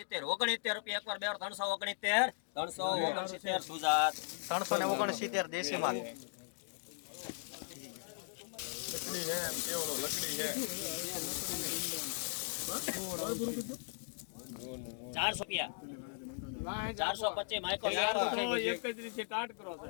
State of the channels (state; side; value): silent; right; digital silence